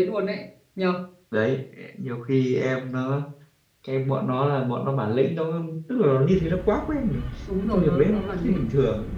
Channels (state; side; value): identical; both; correlation 1.00